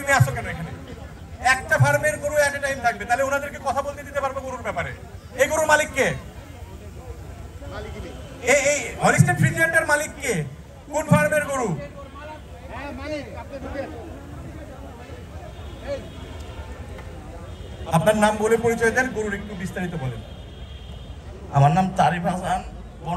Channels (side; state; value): both; identical; correlation 1.00